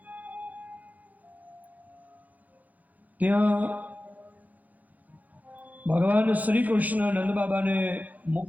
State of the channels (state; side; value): late; left; 0.079 ms